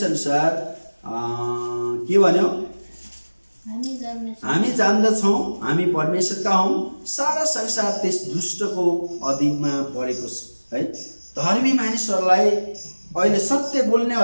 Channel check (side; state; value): both; inverted; correlation -1.00